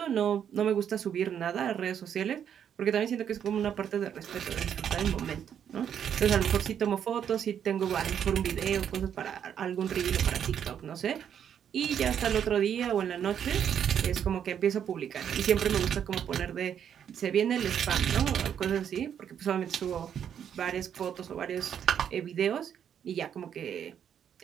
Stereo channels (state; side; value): quieter; left; 8.7 dB